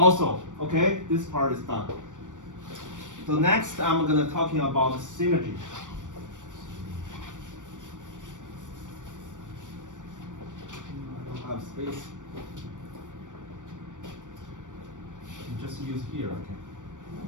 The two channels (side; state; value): left; late; 0.87 ms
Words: okay, this part is done. So next, I'm gonna talking about synergy. I don't have space. Just use here, okay.